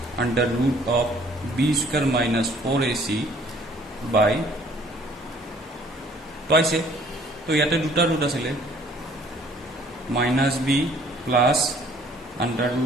under root of b square minus 4ac by twice তো ইয়াতে দুটা রুট আছিল minus b plus under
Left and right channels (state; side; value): normal; both; correlation 0.57